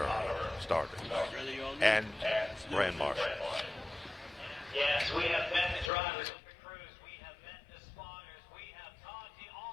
starter and Grand Marshal. Yes, we have met the drivers of the crews. We have met the spotters. We have talked to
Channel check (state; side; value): drops out; right; at 5.9 s